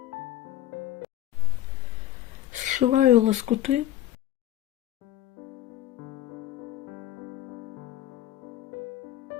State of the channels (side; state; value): right; quieter; 13.3 dB